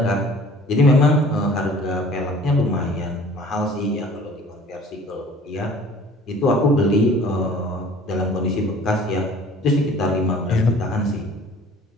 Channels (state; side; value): normal; both; correlation 0.49